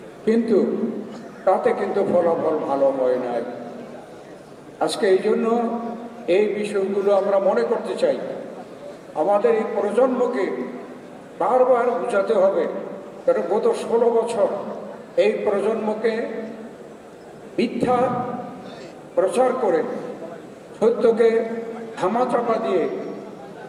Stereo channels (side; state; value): both; identical; correlation 1.00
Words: কিন্তু তাতে কিন্তু ফলাফল ভালো হয় নাই। আজকে এই জন্য এই বিষয়গুলো আমরা মনে করতে চাই, আমাদের এই প্রজন্মকে বারবার বোঝাতে হবে। কারণ গত 16 বছর এই প্রজন্মকে মিথ্যা প্রচার করে সত্যকে ধামাচাপা দিয়ে